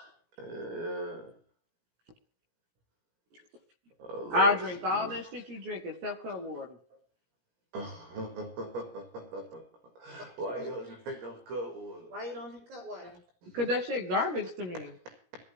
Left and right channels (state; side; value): late; left; 17 ms